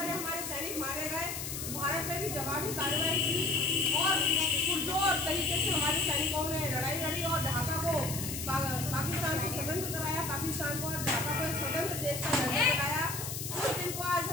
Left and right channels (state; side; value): noise; left; hiss, 6 dB below the sound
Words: हमारे सैनिक मारे गए। भारत ने भी जवाबी कार्रवाई की और पुरजोर तरीके से हमारे सैनिकों ने लड़ाई लड़ी और ढाका को पाकिस्तान से स्वतंत्र कराया, पाकिस्तान को और ढाका को एक स्वतंत्र देश का दर्जा दिलाया। उस दिन को आज